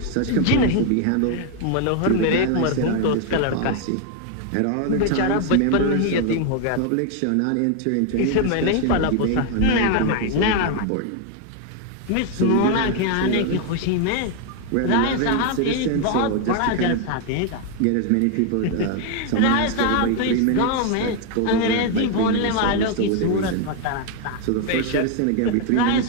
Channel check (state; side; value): different; both; correlation 0.01